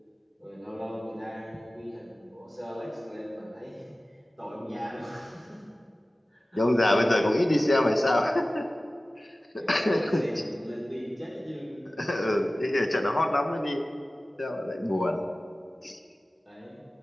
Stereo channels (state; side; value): normal; both; correlation 0.97